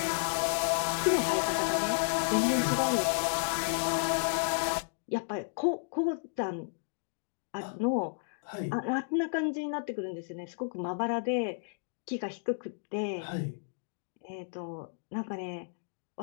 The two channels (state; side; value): silent; right; digital silence